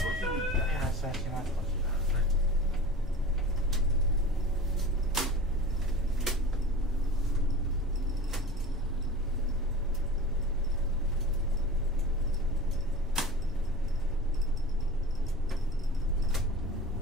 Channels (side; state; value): both; normal; correlation 0.37